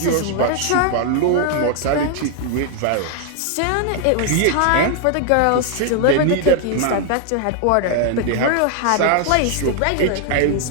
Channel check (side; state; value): both; different; correlation 0.00